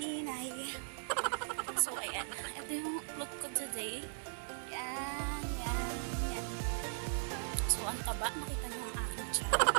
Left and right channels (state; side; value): silent; left; digital silence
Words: So ayan, ito yung look ko today. Yan, yan, yan. So ang taba, nakita niyo ang aking tiyan.